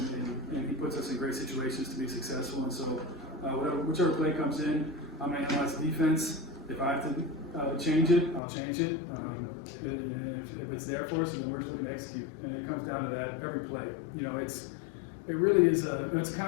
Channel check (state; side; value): drops out; right; at 8.4 s